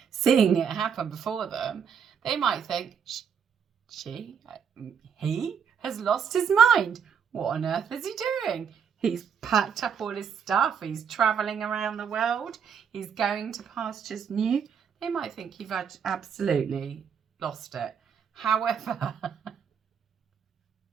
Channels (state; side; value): quieter; left; 7.1 dB